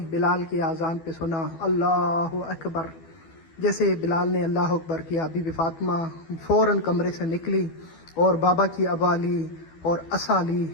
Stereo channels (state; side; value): late; right; 12 ms